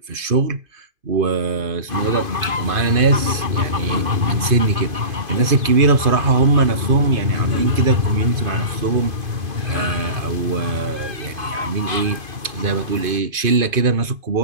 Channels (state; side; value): late; left; 2.5 ms